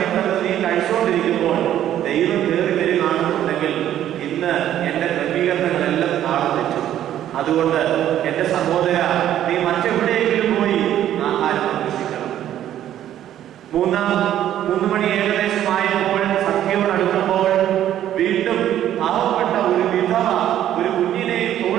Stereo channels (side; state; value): left; quieter; 11.6 dB